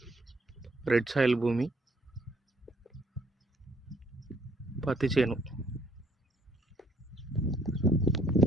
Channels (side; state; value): both; normal; correlation 0.65